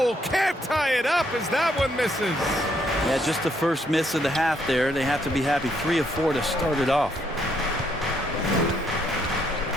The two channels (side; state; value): both; normal; correlation 0.72